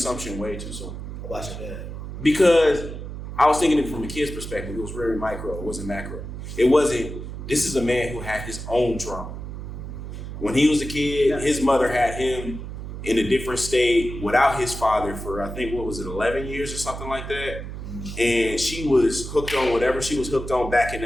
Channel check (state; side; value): noise; right; hum, 8 dB below the sound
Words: way too soon. About your dad. Because I was thinking it from a kid's perspective. It was very micro. It wasn't macro. It wasn't, this is a man who had his own trauma. When he was a kid, his mother had him in a different state without his father for, I think, 11 years or something like that. And she was hooked on whatever she was hooked on back in